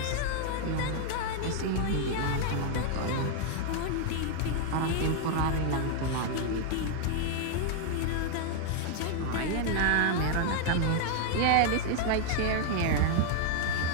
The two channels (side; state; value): both; different; correlation 0.00